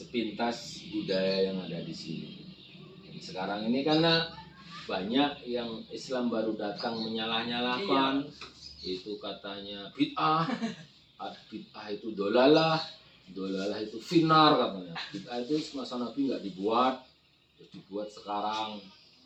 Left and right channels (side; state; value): both; identical; correlation 1.00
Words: budaya yang ada di sini. Dan sekarang ini karena banyak yang Islam baru datang menyalah-nyalahkan. Itu katanya bid'ah, bid'ah itu dolalah itu finar katanya. Bid'ah itu masa Nabi nggak dibuat, terus dibuat sekarang.